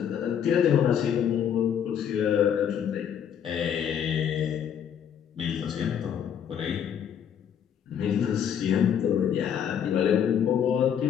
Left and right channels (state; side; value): quieter; right; 8.6 dB